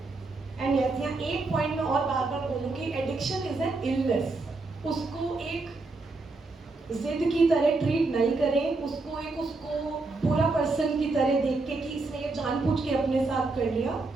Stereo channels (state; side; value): quieter; left; 3.5 dB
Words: एंड यस, यहाँ एक पॉइंट में और बार बार बोलूँगी, एडिक्शन इज एन इलनेस। उसको एक जिद की तरह ट्रीट नहीं करें, उसको बुरा पर्सन की तरह देख के कि इसने ये जानबूझ के अपने साथ कर लिया।